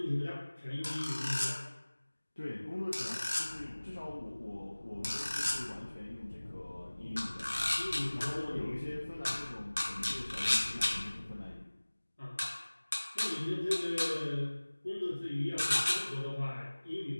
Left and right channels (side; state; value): both; inverted; correlation -1.00